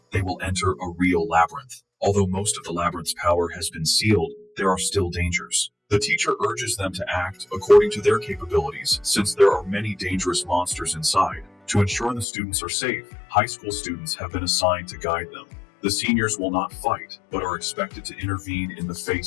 they will enter a real labyrinth. Although most of the labyrinth's power has been sealed, there are still dangers. The teacher urges them to act according to their capabilities, since there are many dangerous monsters inside. To ensure the students are safe, high school students have been assigned to guide them. The seniors will not fight, but are expected to intervene in the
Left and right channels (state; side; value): drops out; right; at 12.2 s